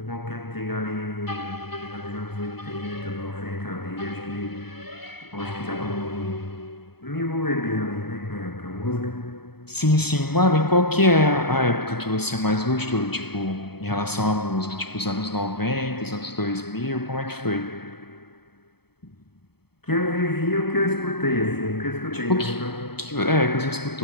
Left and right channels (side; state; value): right; late; 0.97 ms